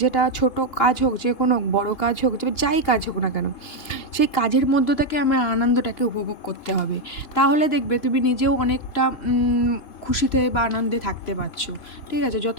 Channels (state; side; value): late; right; 3.1 ms